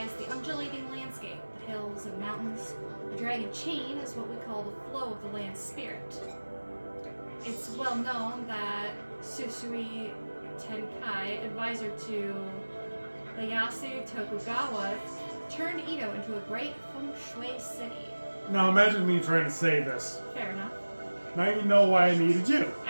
the undulating landscape, the hills and mountains. The dragon chain is what we call the flow of the land spirit. It's well known that Susui Tenkai, advisor to Ieyasu Tokugawa, turned Edo into a great feng shui city. Now imagine me trying to say this. Fair enough. Now you know why I needed you.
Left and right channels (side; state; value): both; inverted; correlation -1.00